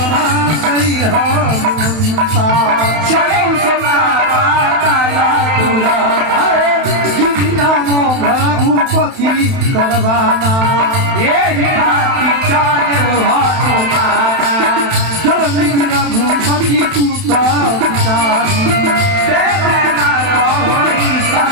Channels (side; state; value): left; late; 31 ms